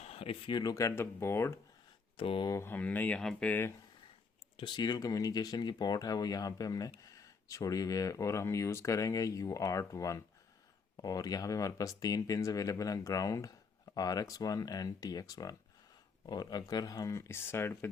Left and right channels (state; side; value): quieter; right; 4.9 dB